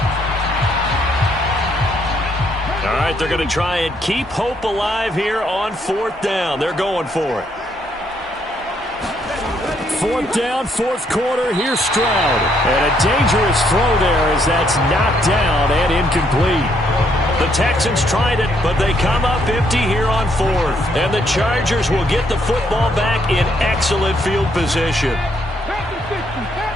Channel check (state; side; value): normal; both; correlation 0.72